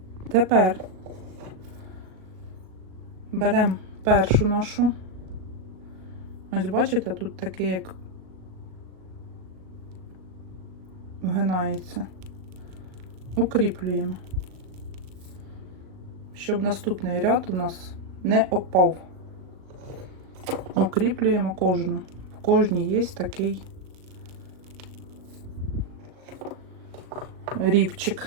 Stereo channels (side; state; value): left; late; 37 ms